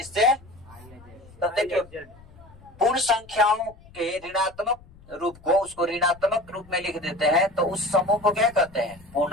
तो देखिए, पूर्ण संख्याओं के ऋणात्मक रूप को, उसको ऋणात्मक रूप में लिख देते हैं, तो उस समूह को क्या कहते हैं?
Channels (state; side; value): noise; left; rumble, 23 dB below the sound